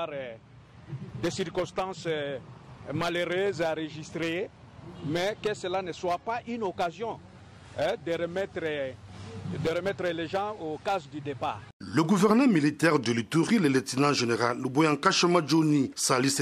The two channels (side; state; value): both; identical; correlation 1.00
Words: des circonstances malheureuses à enregistrer, mais que cela ne soit pas une occasion de remettre les gens aux cases du départ. Le gouverneur militaire de l'Ituri, le lieutenant général Luboyanka Johnny, salue